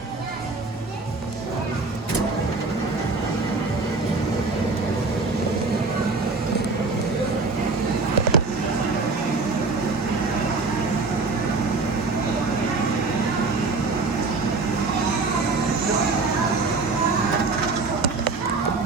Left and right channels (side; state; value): left; quieter; 3.9 dB